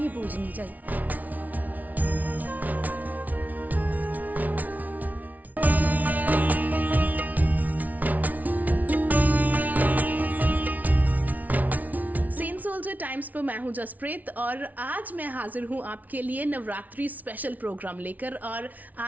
पूजनी चाहिए। टाइम्स पर मैं हूं जसप्रीत, और आज मैं हाजिर हूं आपके लिए नवरात्रि स्पेशल प्रोग्राम लेकर। और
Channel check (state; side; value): late; left; 0.075 ms